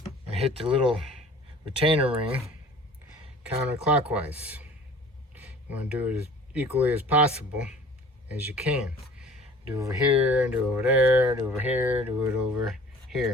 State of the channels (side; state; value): both; normal; correlation 0.47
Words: and hit the little retainer ring counterclockwise. You want to do it as equally as possible as you can. Do over here, do over there, do over here, do it over